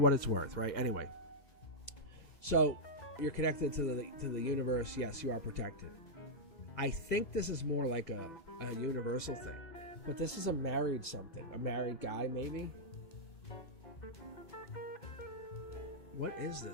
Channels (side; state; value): right; late; 2.0 ms